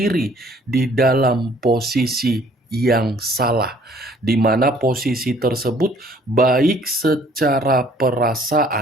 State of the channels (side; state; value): both; normal; correlation 0.58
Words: di dalam posisi yang salah, di mana posisi tersebut baik secara